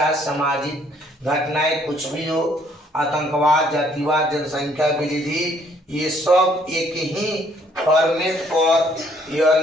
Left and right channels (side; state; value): both; normal; correlation 0.64